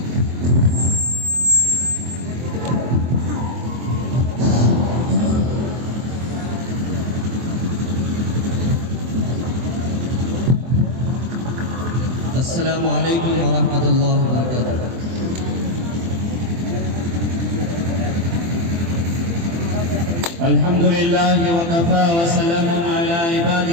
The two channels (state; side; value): late; left; 24 ms